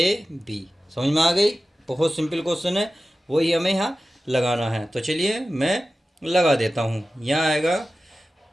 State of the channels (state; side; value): normal; both; correlation 0.94